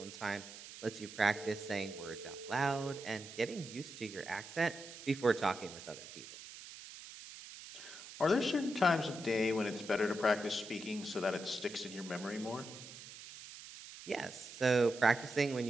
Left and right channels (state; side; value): noise; right; hiss, 14 dB below the sound